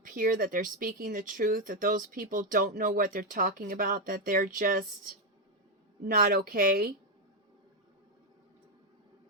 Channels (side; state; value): both; normal; correlation 0.04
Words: that they're speaking the truth, that those people don't know what they're talking about, that they're just not okay.